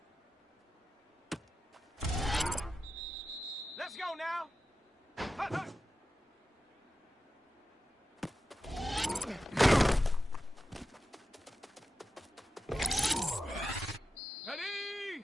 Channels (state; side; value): normal; both; correlation 0.92